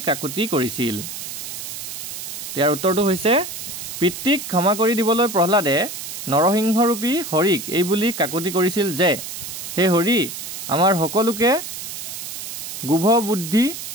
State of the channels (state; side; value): noise; right; hiss, 8 dB below the sound